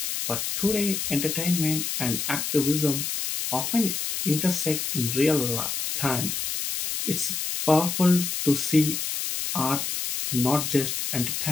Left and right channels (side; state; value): left; noise; hiss, 2 dB below the sound